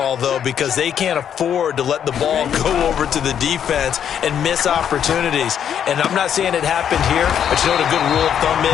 though, because they can't afford to let the ball go over to the defense and miss opportunities. And I'm not saying it happened here, but you know what a good rule of thumb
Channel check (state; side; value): quieter; right; 8.9 dB